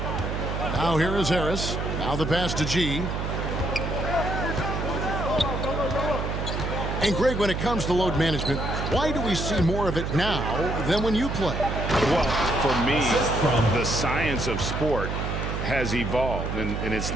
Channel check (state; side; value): noise; right; hum, 3 dB below the sound